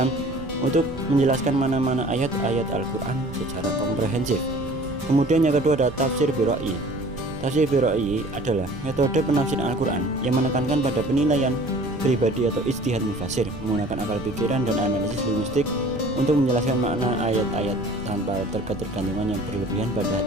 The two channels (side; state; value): right; noise; rumble, 13 dB below the sound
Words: untuk menjelaskan mana-mana ayat-ayat Al-Quran secara komprehensif. Kemudian yang kedua ada tafsir bi ra'yi. Tafsir bi ra'yi adalah metode penafsiran Al-Quran yang menekankan pada penilaian pribadi atau ijtihad mufassir menggunakan akal pikiran dan analisis linguistik untuk menjelaskan makna ayat-ayat tanpa ketergantungan yang berlebihan pada